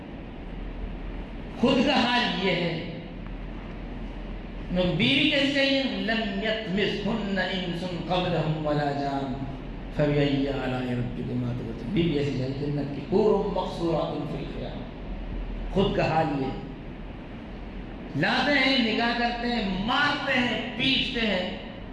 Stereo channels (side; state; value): both; identical; correlation 1.00